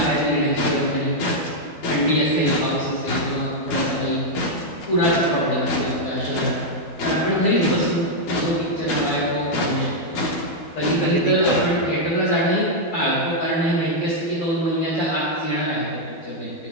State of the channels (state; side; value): late; right; 12 ms